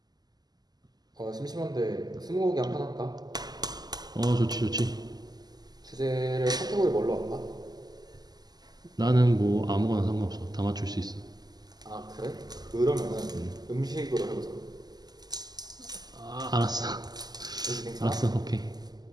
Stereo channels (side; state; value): left; late; 0.20 ms